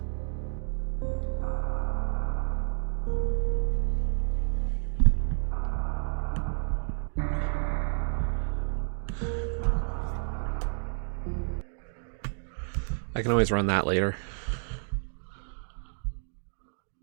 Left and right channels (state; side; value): silent; left; digital silence